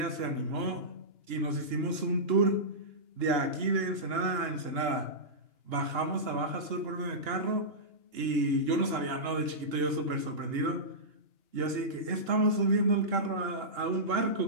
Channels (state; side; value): late; left; 2.9 ms